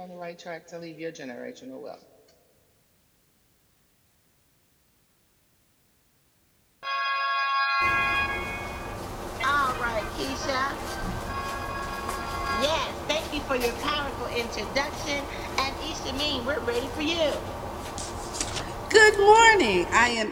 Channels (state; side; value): identical; both; correlation 1.00